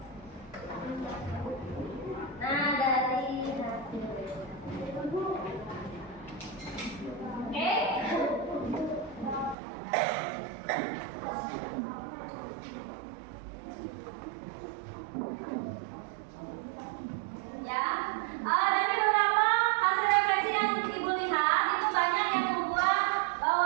Nah, dari hasil. Oke. Ya, dari beberapa hasil refleksi yang ibu lihat itu banyak yang membuat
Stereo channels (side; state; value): left; drops out; at 9.6 s